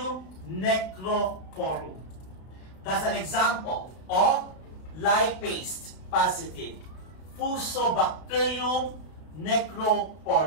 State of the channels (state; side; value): late; right; 32 ms